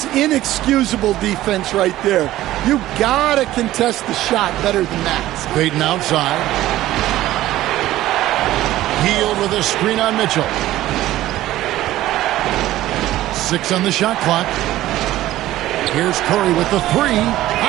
inexcusable defense right there. You gotta contest the shot better than that. Payton outside. Hield with a screen on Mitchell. 6 on the shot clock. Here's Curry with the 3.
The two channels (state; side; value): quieter; left; 15.0 dB